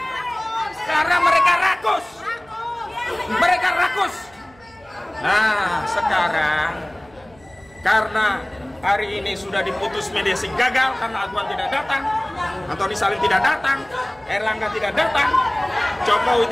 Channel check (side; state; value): right; noise; hum, 28 dB below the sound